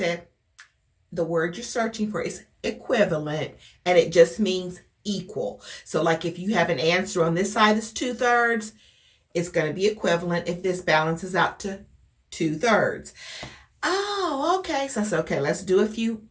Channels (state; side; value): identical; both; correlation 1.00